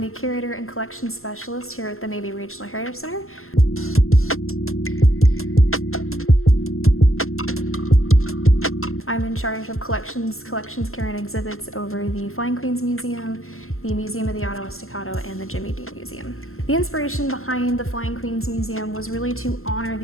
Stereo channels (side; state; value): right; late; 0.62 ms